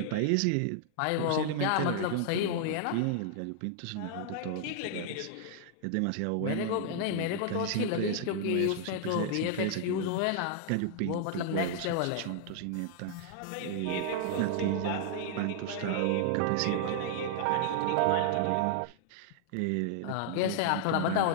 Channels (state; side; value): different; both; correlation -0.01